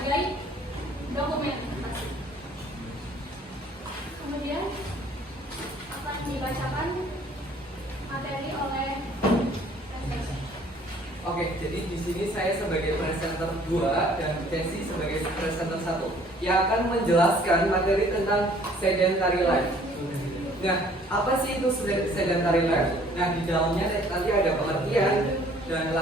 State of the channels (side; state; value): both; normal; correlation 0.57